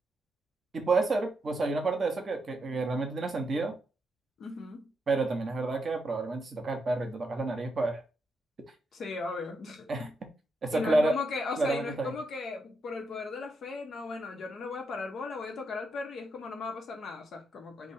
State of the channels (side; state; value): both; normal; correlation 0.82